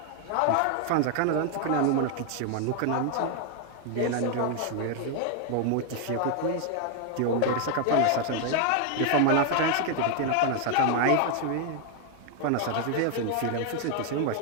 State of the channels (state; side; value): different; both; correlation 0.00